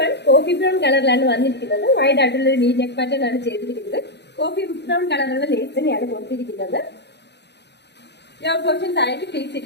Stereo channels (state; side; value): late; right; 0.50 ms